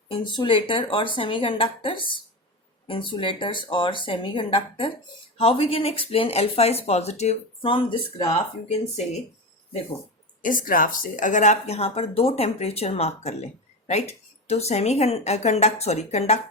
insulator or semiconductors. Insulators or semiconductor. How we can explain alpha is positive? From this graph you can say, देखो इस graph से अगर आप यहाँ पर दो temperature mark कर लें, राइट, तो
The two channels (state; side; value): normal; both; correlation 0.20